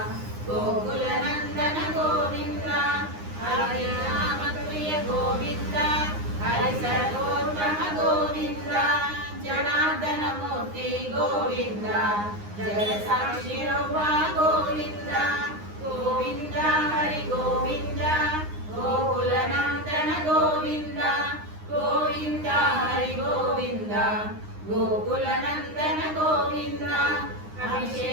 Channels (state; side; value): late; left; 9.7 ms